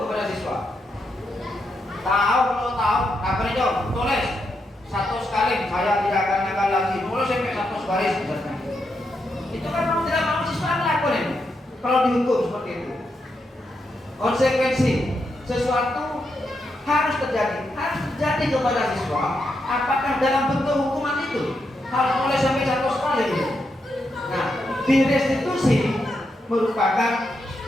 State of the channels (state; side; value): normal; both; correlation 0.83